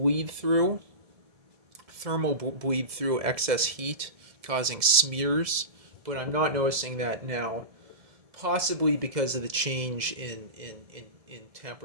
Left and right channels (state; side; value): late; left; 1.7 ms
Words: through, thermal bleed through, excess heat causing smears, but I'm not noticing that now, possibly because of the change in